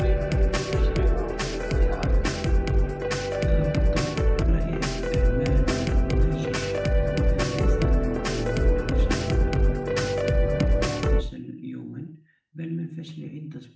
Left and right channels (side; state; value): both; identical; correlation 1.00